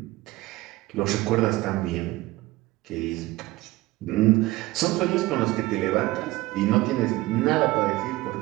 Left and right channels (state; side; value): quieter; left; 18.9 dB